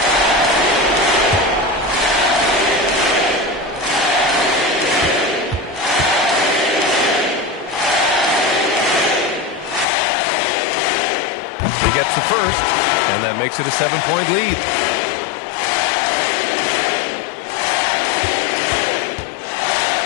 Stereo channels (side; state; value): right; drops out; at 9.9 s